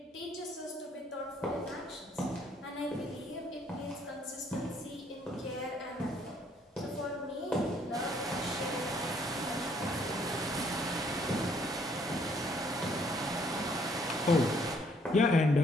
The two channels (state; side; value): normal; both; correlation 0.65